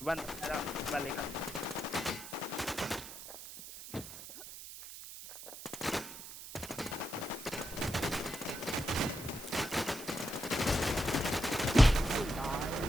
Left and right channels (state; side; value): noise; right; hiss, 12 dB below the sound